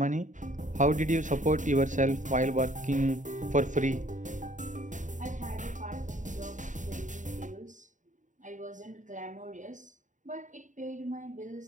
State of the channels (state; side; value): late; left; 0.36 ms